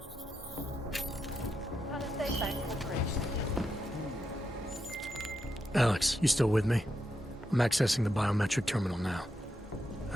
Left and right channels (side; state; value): both; normal; correlation 0.84